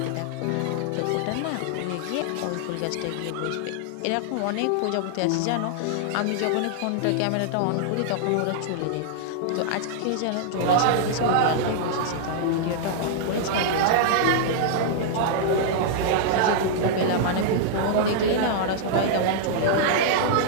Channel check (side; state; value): both; different; correlation -0.01